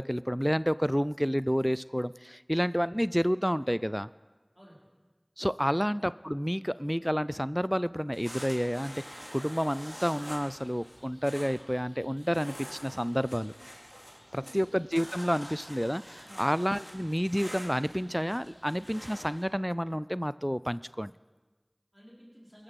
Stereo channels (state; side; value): identical; both; correlation 1.00